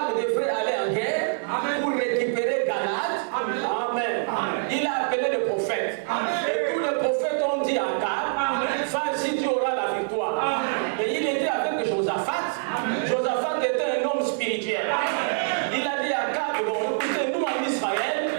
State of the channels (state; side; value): silent; left; digital silence